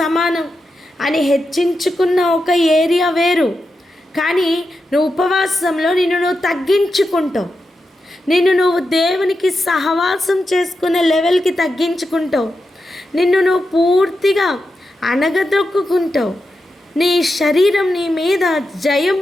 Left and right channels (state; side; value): normal; both; correlation 0.88